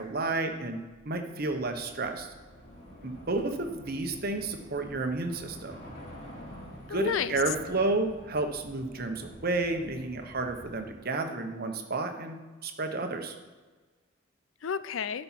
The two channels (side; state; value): both; normal; correlation 0.13